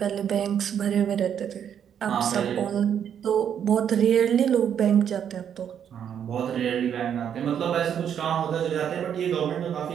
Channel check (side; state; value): left; quieter; 8.7 dB